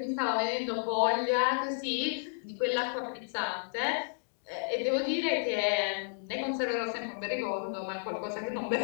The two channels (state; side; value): silent; right; digital silence